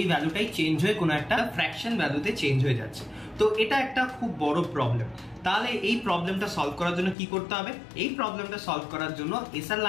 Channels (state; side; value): drops out; right; at 7.2 s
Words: ভ্যালুটাই চেঞ্জ হয়ে কোনো একটা ফ্র্যাকশন ভ্যালুতে চেঞ্জ হয়ে যাচ্ছে। তো এটা একটা খুব বড় প্রবলেম। তাহলে এই প্রবলেমটা সলভ করার জন্য কি করতে হবে? এই প্রবলেমটা সলভ করার জন্য এসআর